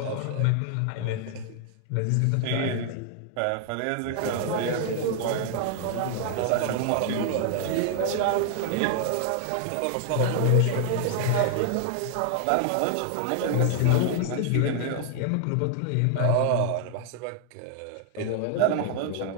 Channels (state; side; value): different; both; correlation 0.00